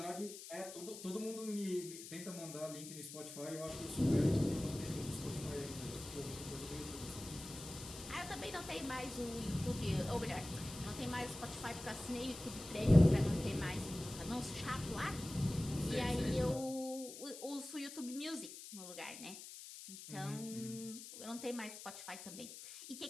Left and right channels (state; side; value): noise; left; hiss, 12 dB below the sound